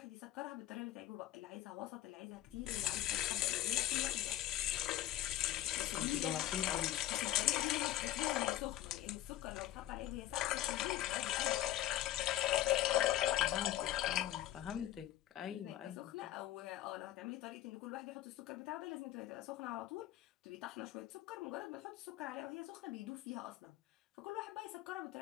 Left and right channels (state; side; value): quieter; right; 13.8 dB